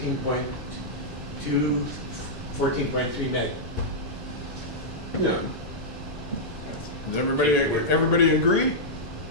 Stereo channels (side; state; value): both; normal; correlation -0.09